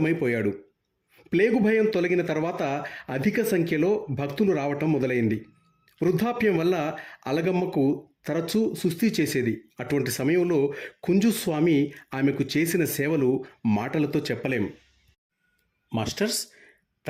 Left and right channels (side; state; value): both; identical; correlation 1.00